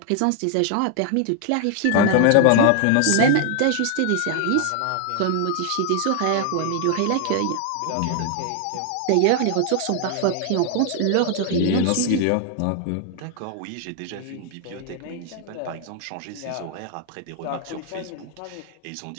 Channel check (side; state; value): both; different; correlation 0.00